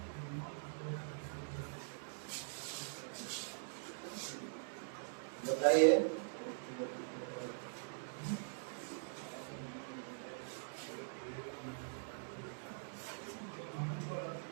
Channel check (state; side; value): silent; left; digital silence